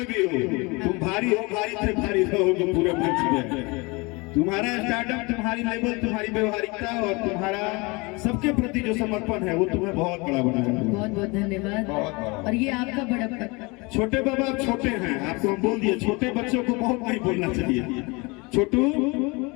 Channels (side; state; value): right; quieter; 26.6 dB